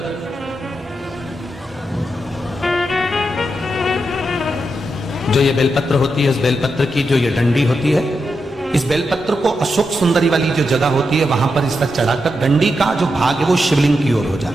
जो ये बेलपत्र होती है, इस बेलपत्र की जो ये डंडी होती है, इस बेलपत्र को अशोक सुंदरी वाली जो जगह होती है वहां पर इसका चढ़ाकर, डंडी का जो भाग है वो शिवलिंग की ओर हो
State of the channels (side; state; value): both; normal; correlation 0.85